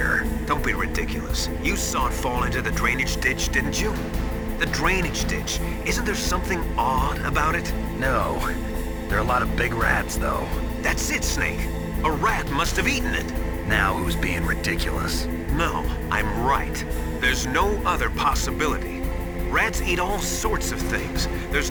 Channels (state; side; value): identical; both; correlation 1.00